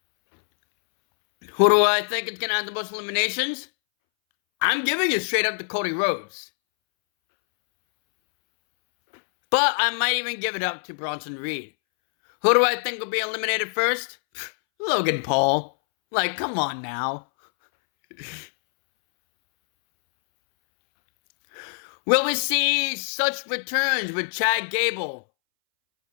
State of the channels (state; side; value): silent; right; 63 dB below the other